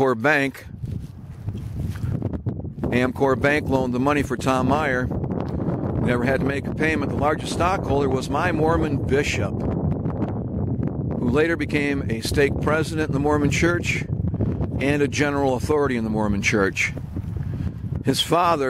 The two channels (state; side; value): identical; both; correlation 1.00